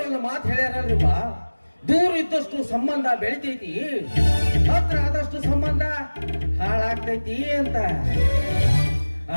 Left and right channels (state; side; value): inverted; both; correlation -1.00